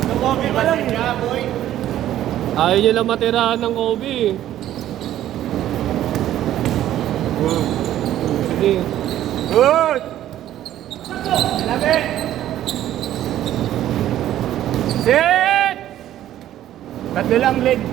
Nakobi ba lang niya, boy? Ayaw nyo lang matirahan ng Kobe. Sige. Good! Labi! Sit! Tatlo lang, leg.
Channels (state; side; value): quieter; left; 12.5 dB